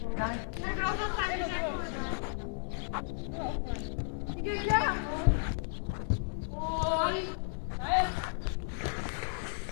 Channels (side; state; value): right; silent; 55 dB below the other